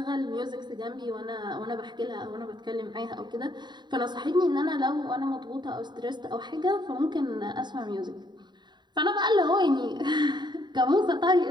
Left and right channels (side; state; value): left; late; 0.21 ms